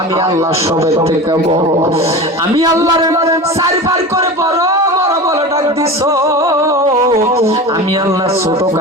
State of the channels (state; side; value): normal; both; correlation 0.30